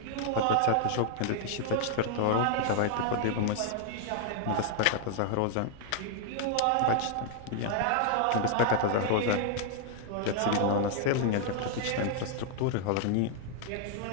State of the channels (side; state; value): both; different; correlation 0.00